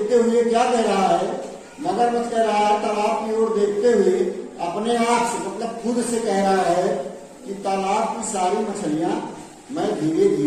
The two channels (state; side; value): identical; both; correlation 1.00